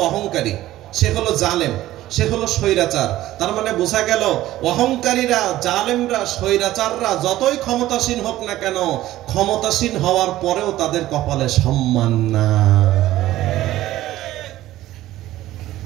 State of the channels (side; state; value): left; quieter; 15.0 dB